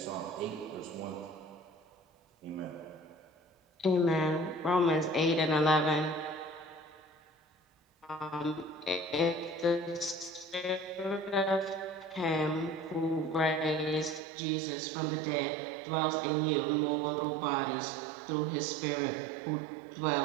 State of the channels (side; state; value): left; drops out; at 14.2 s